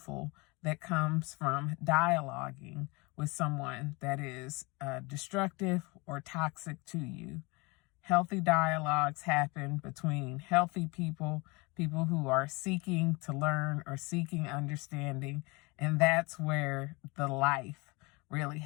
that comes from dialoguing with someone that is destructive or toxic to you. Healthy dialogues happen between healthy people, people who are seeking to learn or seeking understanding, and that's where the life really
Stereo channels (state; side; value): quieter; right; 26.7 dB